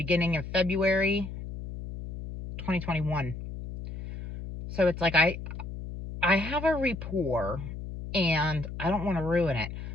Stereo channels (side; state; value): left; noise; hum, 9 dB below the sound